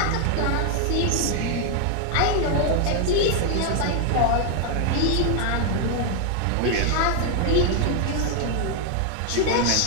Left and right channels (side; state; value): both; different; correlation 0.00